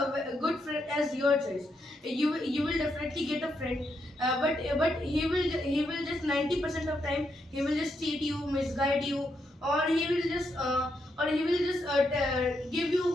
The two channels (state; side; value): normal; both; correlation 0.80